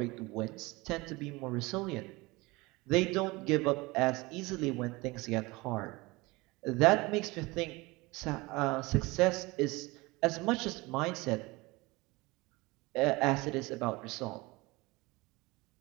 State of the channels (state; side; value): quieter; left; 23.0 dB